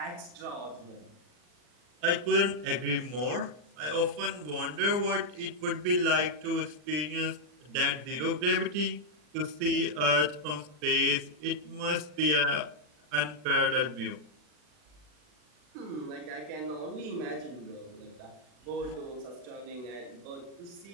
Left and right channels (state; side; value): late; left; 40 ms